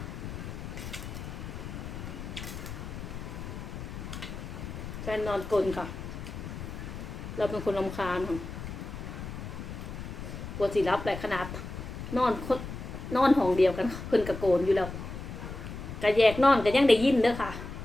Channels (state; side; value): noise; left; rumble, 9 dB below the sound